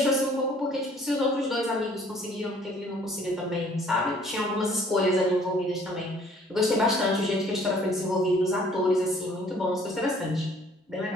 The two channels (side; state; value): both; normal; correlation 0.57